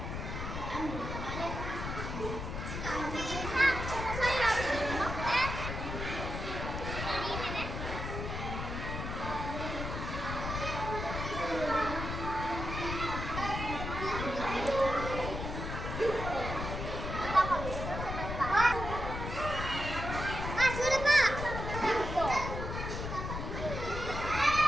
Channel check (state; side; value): noise; left; rumble, 5 dB below the sound